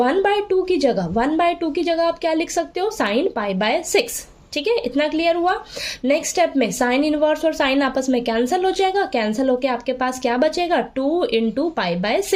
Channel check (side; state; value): both; identical; correlation 1.00